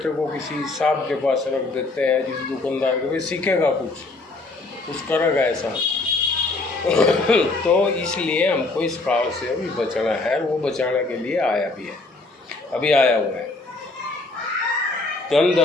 को किसी साहब के पास रख देते हैं, किसी दुकानदार के, वे सीखेगा कुछ करेगा ऐसा तो इसलिए हमको इस काल से अभी बचना है। वो बचाने के लिए आया भी है, अभी आया हुआ है। धन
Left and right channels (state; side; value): quieter; right; 3.3 dB